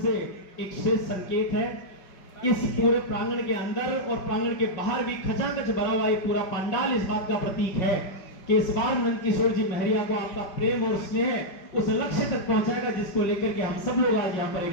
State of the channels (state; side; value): late; right; 5.5 ms